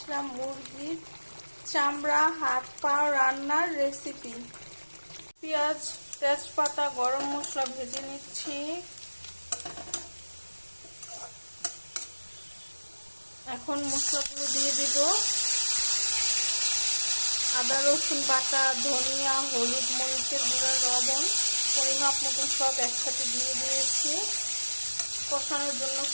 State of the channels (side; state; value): both; inverted; correlation -1.00